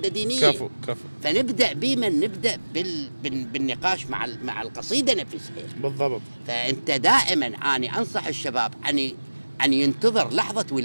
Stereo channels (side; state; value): both; inverted; correlation -1.00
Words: دينيه. كفو. فنبدا نبدا بالنقاش مع القصيده نفسها. بالضبط. فانت دائما اني انصح الشباب ان ينتظر لحظه